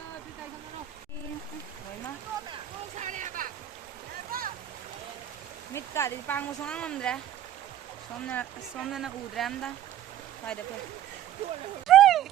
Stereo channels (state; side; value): quieter; left; 11.5 dB